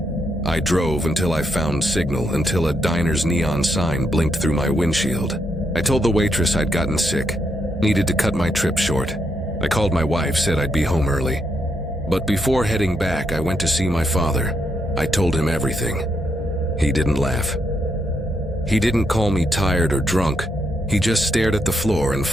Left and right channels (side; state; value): both; normal; correlation 0.79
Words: I drove until I found signal, until a diner's neon sign blinked through my windshield. I told the waitress I'd gotten sick, needed to cut my trip short. I called my wife, said I'd be home early. But before heading back, I went to see my father. I told him everything. He didn't laugh. He didn't call me tired or drunk. He just stared at the floor and